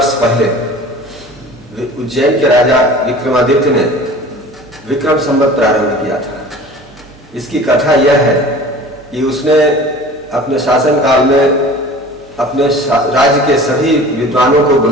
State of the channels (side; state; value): right; noise; hum, 26 dB below the sound